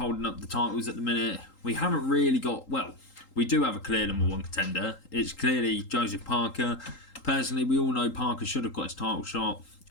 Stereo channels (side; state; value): right; late; 3.8 ms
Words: up the titles at the minute. We haven't really got, well, we do have a clear number one contender. It's clearly Joseph Parker. Personally, we all know Parker should have got his title shot